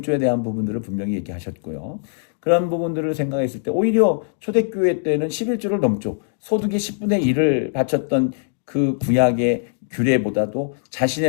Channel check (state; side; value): silent; right; digital silence